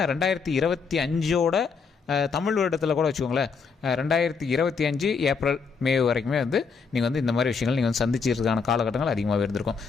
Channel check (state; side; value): quieter; right; 5.3 dB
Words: 2025 தமிழ் வருடத்தில் கூட வச்சுக்கோங்களேன், 2025 ஏப்ரல் மே வரைக்குமே நீங்கள் இந்த மாதிரி விஷயங்கள் நீங்கள் சந்திச்சிருக்கான காலகட்டங்கள் அதிகமாக இருந்திருக்கும்.